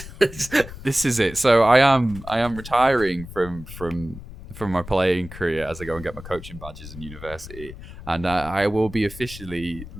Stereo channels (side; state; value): left; noise; rumble, 14 dB below the sound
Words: This is it. So I am retiring from my playing career as I go and get my coaching badges in university, and I will be officially